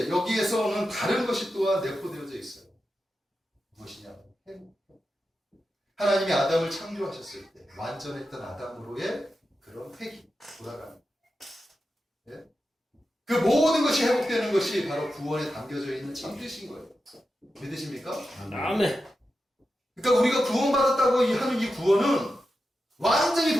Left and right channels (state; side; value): normal; both; correlation 0.90